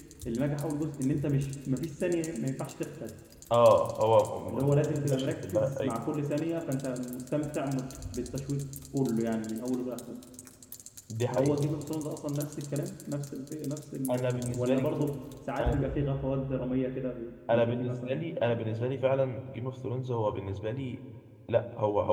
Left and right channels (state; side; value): identical; both; correlation 1.00